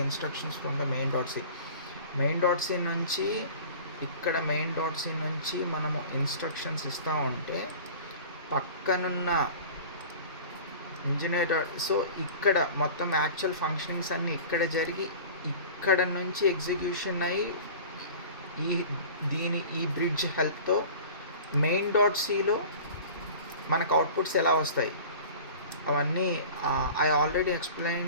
instructions from the main.c. main.c నుంచి ఇక్కడ main.c నుంచి మనము instructions ఇస్తూ ఉంటే పక్కనున్న engineer. So ఇక్కడ మొత్తం actual functionings అన్నీ ఇక్కడ జరిగి ఇక్కడ నుంచి ఎగ్జిక్యూషన్ అయ్యి ఈ బ్రిడ్జ్ హెల్ప్తో మెయిన్ డాట్ సిలో మనకు అవుట్పుట్స్ ఎలా వస్తాయి అవన్నీ I already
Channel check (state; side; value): inverted; both; correlation -0.40